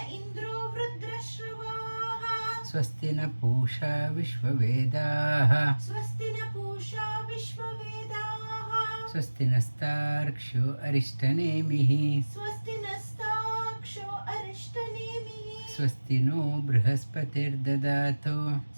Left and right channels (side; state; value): both; inverted; correlation -1.00